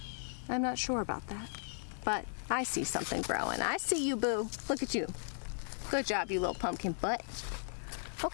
I'm not sure about that. But I see something growing. I see you, boo. Look at you. Good job, you little pumpkin butt.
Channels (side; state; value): right; silent; 54 dB below the other